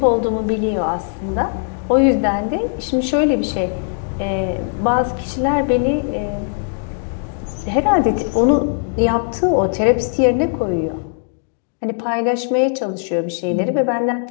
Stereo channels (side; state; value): right; silent; digital silence